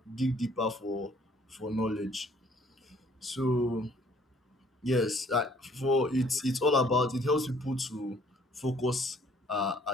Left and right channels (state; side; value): normal; both; correlation 0.60